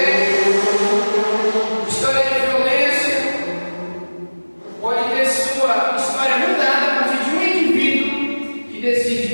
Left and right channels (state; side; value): inverted; both; correlation -1.00